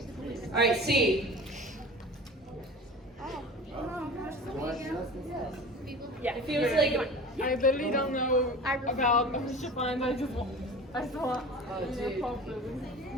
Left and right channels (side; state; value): both; normal; correlation 0.37